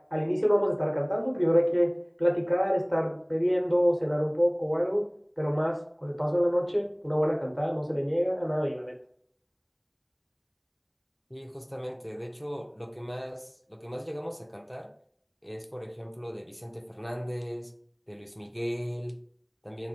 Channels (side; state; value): both; identical; correlation 1.00